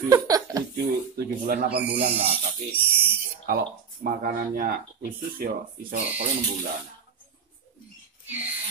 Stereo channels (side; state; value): left; quieter; 6.5 dB